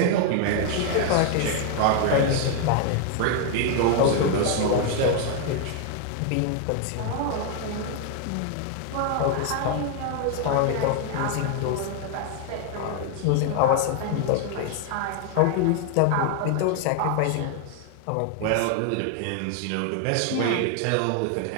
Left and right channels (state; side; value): different; both; correlation 0.00